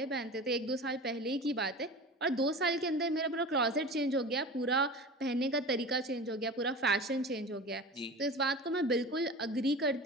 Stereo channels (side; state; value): both; normal; correlation 0.34